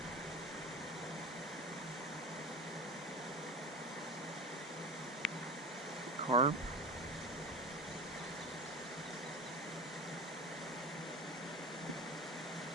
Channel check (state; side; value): normal; both; correlation 0.30